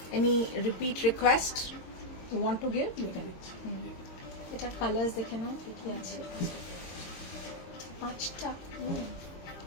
Any repeat request you want to give? You can. এটা কালার্স দেখে নাও কি আছে। 5টা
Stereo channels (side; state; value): right; late; 22 ms